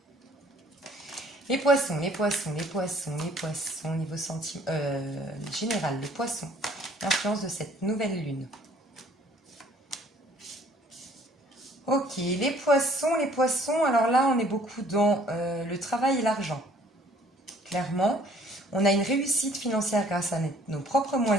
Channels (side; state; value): both; normal; correlation 0.58